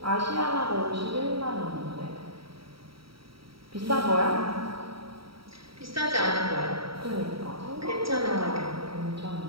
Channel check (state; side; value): late; left; 0.75 ms